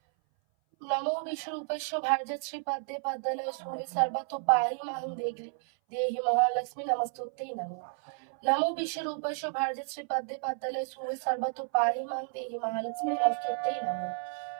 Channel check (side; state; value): left; silent; 57 dB below the other